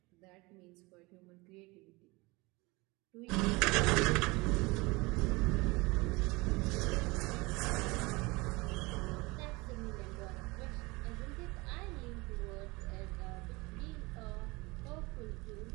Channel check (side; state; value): left; quieter; 24.2 dB